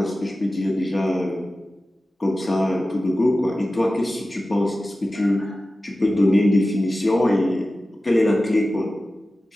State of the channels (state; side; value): normal; both; correlation 0.95